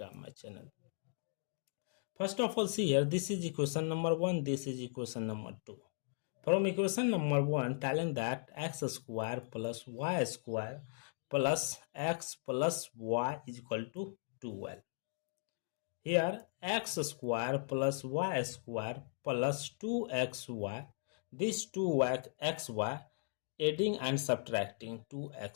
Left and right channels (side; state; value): right; silent; digital silence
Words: my channel. First of all, see here, this is equation number 1, this is equation number 2. From equation number 1, telling that x square plus y square plus x plus y is equal to 12. Here, x square plus y square plus 2xy, this 2xy, adding and subtracting